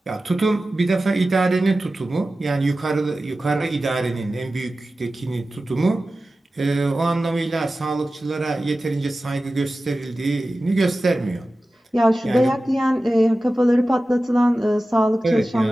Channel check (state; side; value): normal; both; correlation 0.95